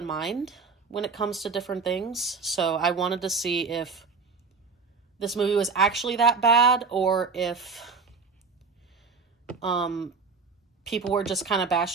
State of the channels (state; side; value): quieter; left; 4.8 dB